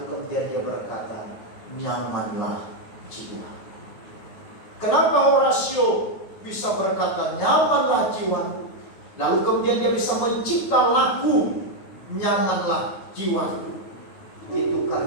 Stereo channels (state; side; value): late; right; 9.3 ms